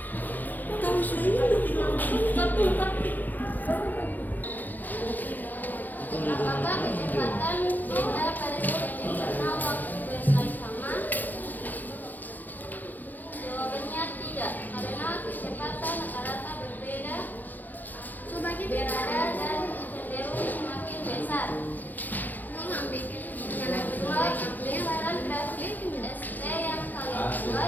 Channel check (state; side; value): late; right; 0.085 ms